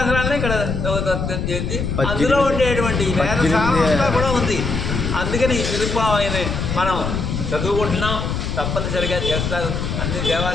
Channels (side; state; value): left; noise; rumble, 2 dB below the sound